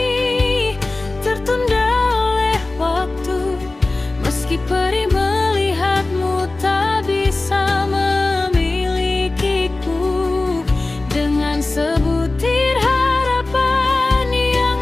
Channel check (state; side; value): quieter; right; 3.1 dB